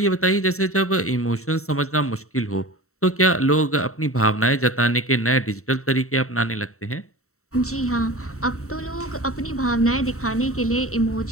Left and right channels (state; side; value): late; right; 0.63 ms